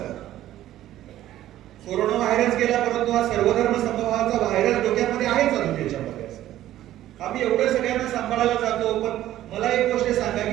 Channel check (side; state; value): left; quieter; 13.5 dB